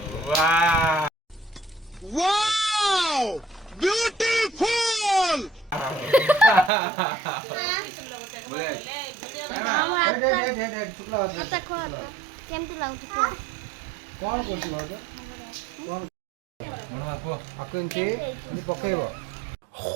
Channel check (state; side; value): drops out; left; at 6.7 s